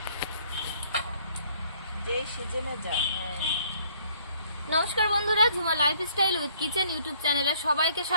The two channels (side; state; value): both; inverted; correlation -0.62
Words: যেই সিজনে যায়। নমস্কার বন্ধুরা, Jhuma lifestyle with kitchen YouTube চ্যানেলে সবাইকে